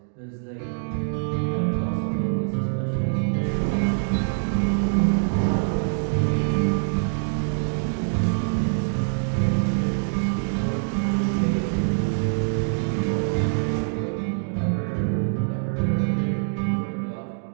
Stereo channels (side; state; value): left; silent; digital silence